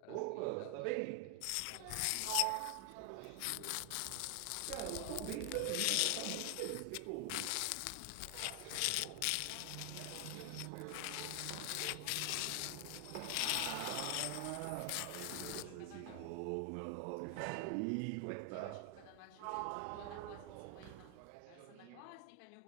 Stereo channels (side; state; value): both; different; correlation 0.00